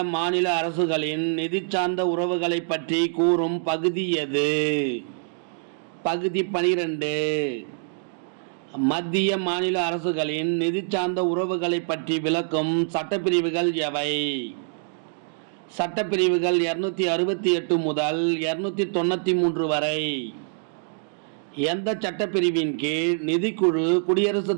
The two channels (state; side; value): silent; left; digital silence